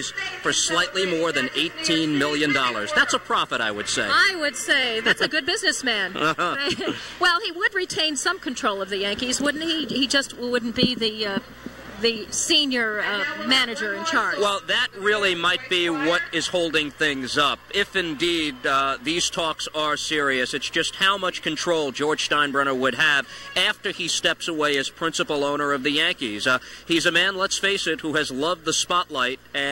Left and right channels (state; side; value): identical; both; correlation 1.00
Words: for slightly more than $18 million. That's a profit, I would say. I would say that's a good businessman. Well, he would retain some control of the Yankees, wouldn't he? He just wouldn't be the the senior manager in charge. Well, that really might be what is holding things up. If indeed these talks are serious, it's just how much control George Steinbrenner would have after he steps away as principal owner of the Yankees. He's a man, let's face it, who has loved the spotlight